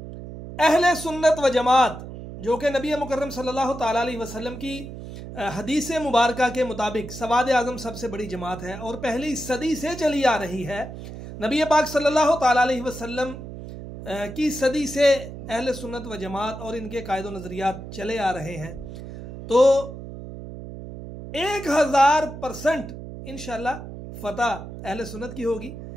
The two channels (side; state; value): right; noise; hum, 11 dB below the sound